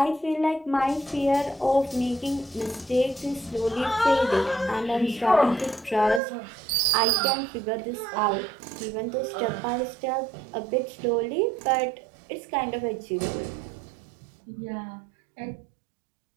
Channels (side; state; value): left; drops out; at 6.2 s